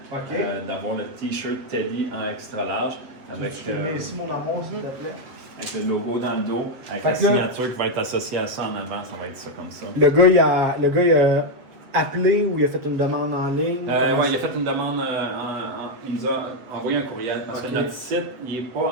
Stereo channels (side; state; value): left; late; 7.9 ms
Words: OK. d'avoir le t-shirt Teddy en extra large avec, Tu mets ici mon amour, s'il te plaît. avec le logo dans le dos, avec Fait la que là- signature qui va être associée à ça en avant, ça va être ça comme ça. Le gars, il a appelé ou il a fait une demande en ligne? Ouais, il a fait une demande, il nous a envoyé un courriel parce Ok. que notre site il n'est